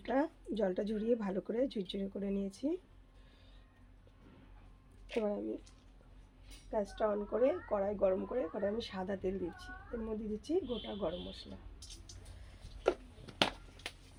জলটা ঝরিয়ে ভালো করে ঝুরঝুরে করে নিয়েছি। এবার আমি গ্যাসটা অন করে কড়াই গরম করে কড়াই আমি সাদা তেল দিচ্ছি, এর মধ্যে দিচ্ছি গোটা গরম মশলা,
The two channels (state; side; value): identical; both; correlation 1.00